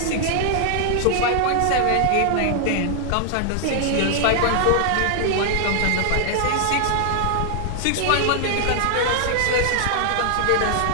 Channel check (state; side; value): different; both; correlation -0.01